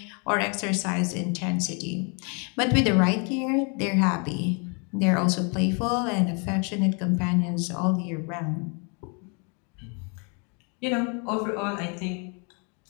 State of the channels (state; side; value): quieter; right; 35.8 dB